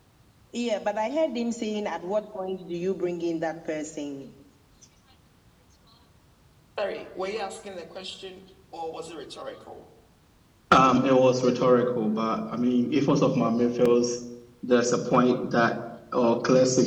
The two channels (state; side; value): identical; both; correlation 1.00